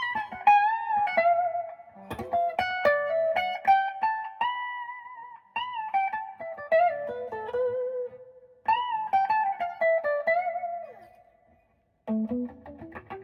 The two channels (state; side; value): identical; both; correlation 1.00